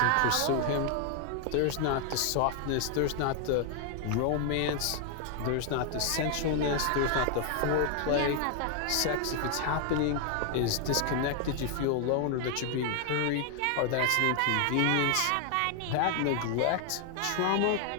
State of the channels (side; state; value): both; different; correlation 0.00